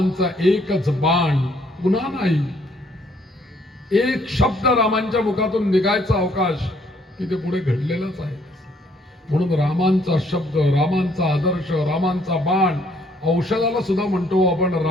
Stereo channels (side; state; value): both; normal; correlation 0.66